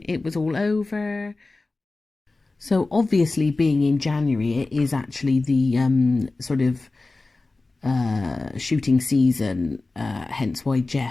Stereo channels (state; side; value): quieter; right; 3.4 dB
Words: it was all over. So obviously, being in January, it is actually the sort of shooting season, hence why